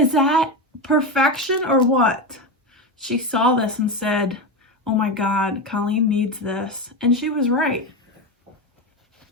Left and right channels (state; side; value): normal; both; correlation 0.16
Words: that perfection or what? She saw this and said, "Oh my God, Colleen needs this." And she was right.